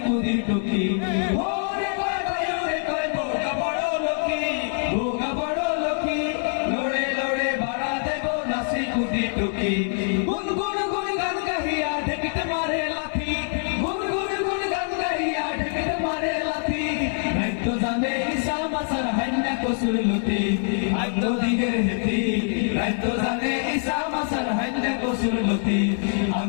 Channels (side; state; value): right; silent; 62 dB below the other